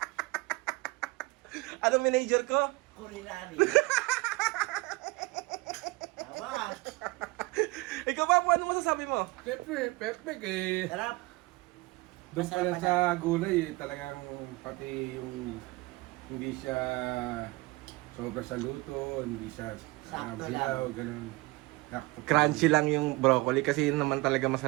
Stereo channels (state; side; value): quieter; left; 22.6 dB